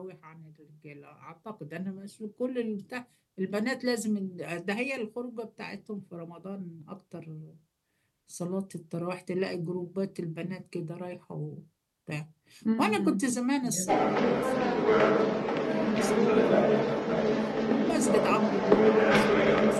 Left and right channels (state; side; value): identical; both; correlation 1.00